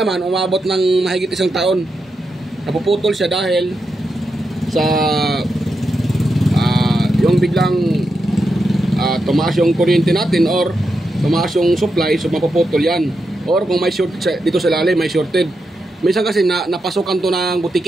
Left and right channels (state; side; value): normal; both; correlation 0.86